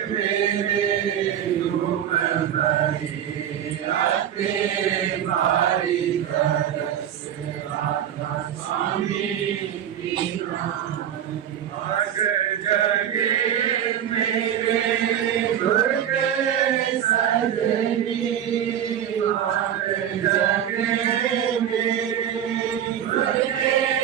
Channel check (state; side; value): quieter; left; 9.9 dB